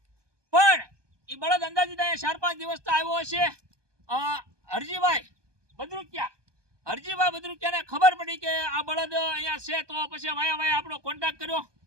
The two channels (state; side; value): late; left; 1.2 ms